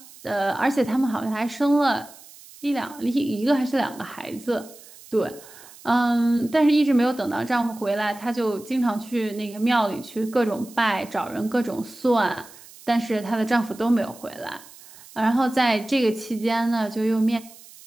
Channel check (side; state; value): right; noise; hiss, 21 dB below the sound